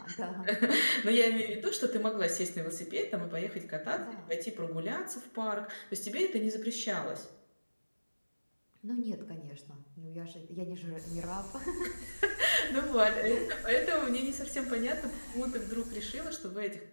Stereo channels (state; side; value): inverted; both; correlation -1.00